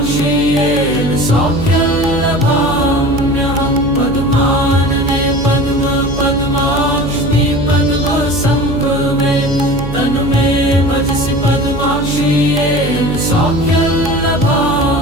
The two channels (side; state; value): right; noise; hum, 7 dB below the sound